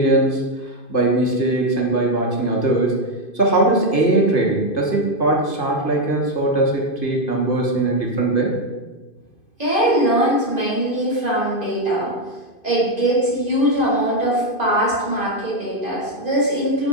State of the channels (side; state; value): right; late; 2.5 ms